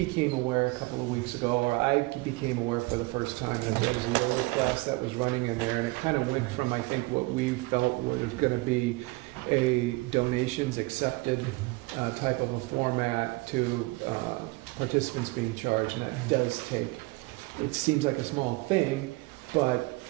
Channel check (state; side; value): quieter; left; 23.8 dB